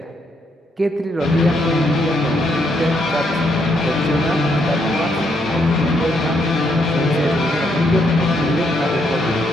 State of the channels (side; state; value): both; normal; correlation 0.75